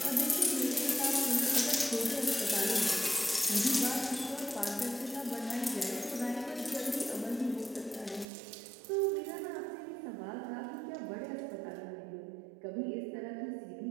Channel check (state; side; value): drops out; left; at 8.2 s